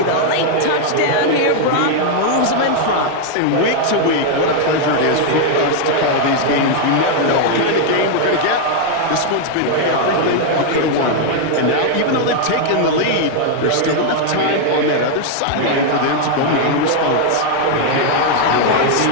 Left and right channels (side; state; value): both; different; correlation 0.00